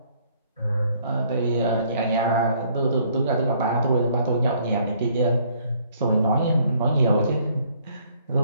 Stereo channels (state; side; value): inverted; both; correlation -0.63